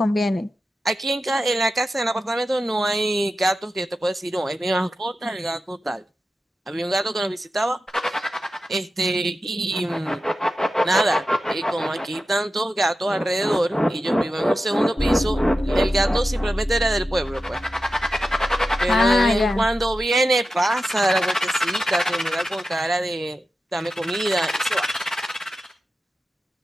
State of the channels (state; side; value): normal; both; correlation 0.92